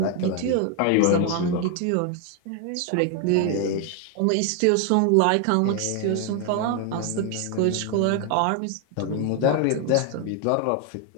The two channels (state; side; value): different; both; correlation 0.01